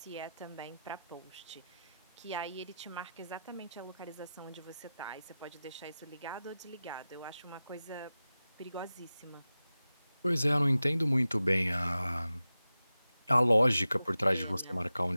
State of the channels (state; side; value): inverted; both; correlation -0.94